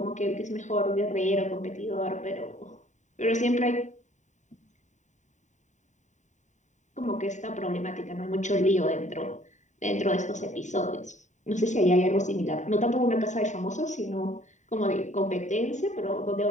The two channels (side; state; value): right; late; 0.35 ms